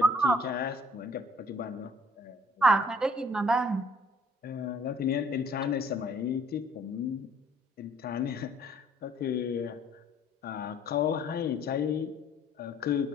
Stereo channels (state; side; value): normal; both; correlation 0.58